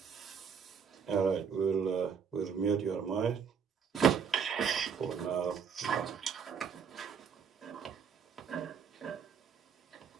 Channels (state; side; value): quieter; left; 6.8 dB